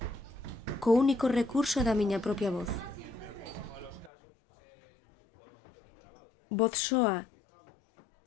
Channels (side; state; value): right; drops out; at 4.1 s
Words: co único recurso da miña propia voz. Voz soa